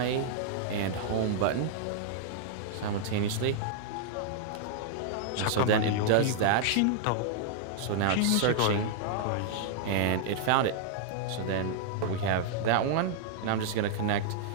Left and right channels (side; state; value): both; different; correlation -0.01